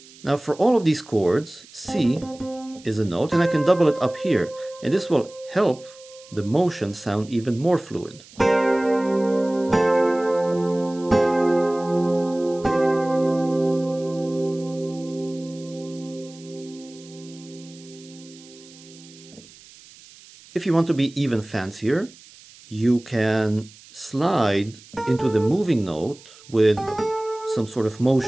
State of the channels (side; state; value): right; noise; hiss, 22 dB below the sound